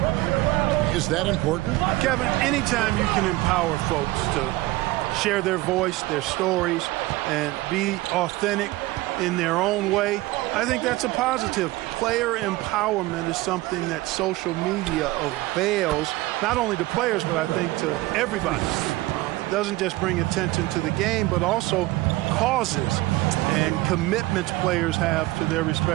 Is that important? Kevin, anytime you can empower folks to share their voice, their stories, and be authentic in their own way, I think that's a positive. Player empowerment is something that social media avails, not only to players, but I think to everybody. It doesn't just bring attention to the game, but also causes and commitments players have to their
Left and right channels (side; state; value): left; quieter; 19.1 dB